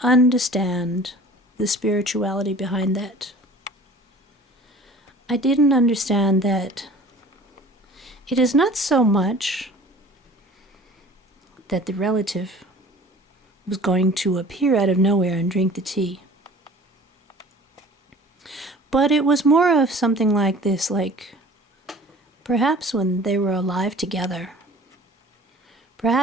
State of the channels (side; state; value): both; normal; correlation 0.45